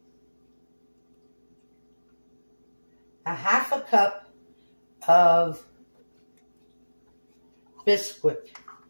a half a cup of biscuit,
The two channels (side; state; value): both; inverted; correlation -1.00